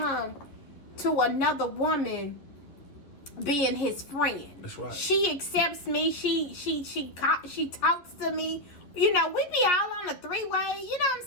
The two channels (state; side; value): late; right; 11 ms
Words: to another woman being his friend. That's right. She accepts me. She talks to me. You know, we be all on a 3-way. You know what I'm